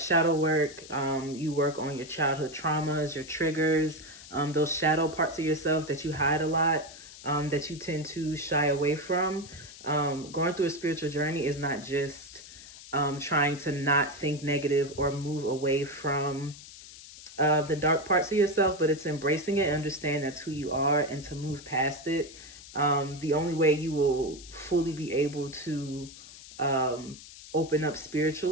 work. You work on your childhood traumas, your triggers, those shadow parts of yourself that you hide a lot, that you tend to shy away from. Going through a spiritual journey is not just trying to not think negative or move away from the dark parts of yourself, but it's embracing it, understand that's who you are, and to move past it. The only way you will fully be able to open up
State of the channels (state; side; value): noise; left; hiss, 17 dB below the sound